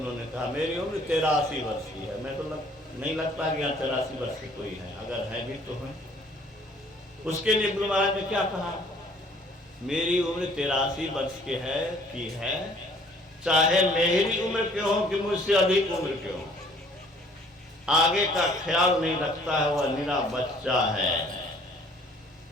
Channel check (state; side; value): normal; both; correlation 0.57